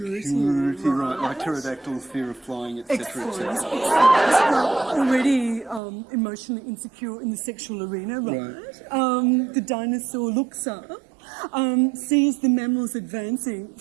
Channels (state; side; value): drops out; left; at 5.8 s